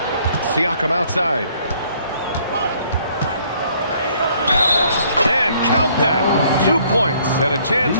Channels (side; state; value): both; inverted; correlation -0.63